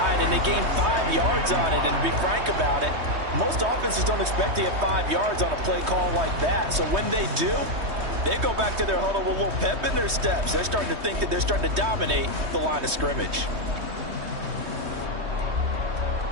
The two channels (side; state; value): left; late; 3.2 ms